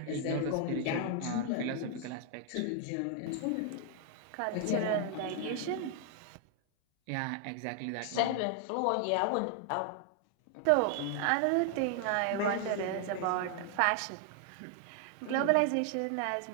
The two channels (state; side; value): different; both; correlation 0.00